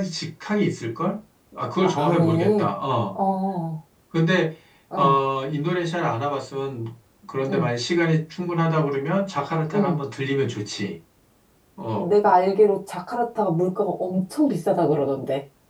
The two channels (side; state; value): both; identical; correlation 1.00